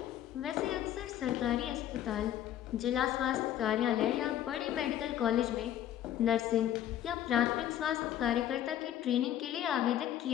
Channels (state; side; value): quieter; right; 11.5 dB